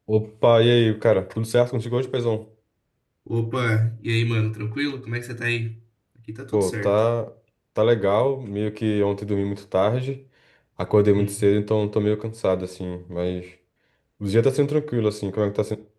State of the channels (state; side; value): identical; both; correlation 1.00